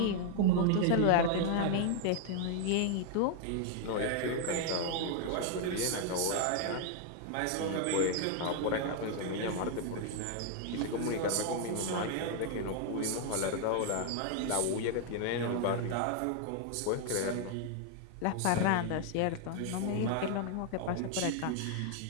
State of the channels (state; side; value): different; both; correlation 0.00